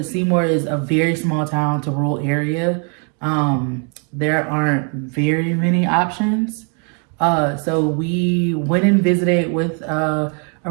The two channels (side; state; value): left; quieter; 39.8 dB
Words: Seymour is a very small town to rural area. There aren't very many options. So we went and visited with a